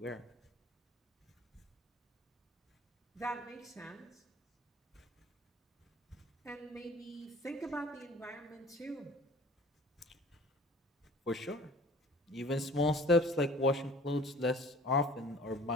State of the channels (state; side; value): normal; both; correlation 0.48